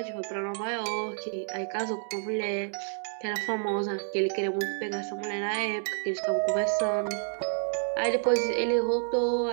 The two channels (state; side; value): silent; left; 58 dB below the other